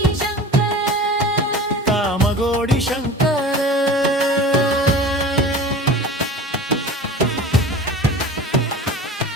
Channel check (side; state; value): both; normal; correlation 0.37